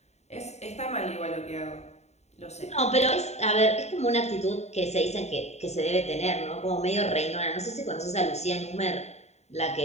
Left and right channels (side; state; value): right; late; 0.32 ms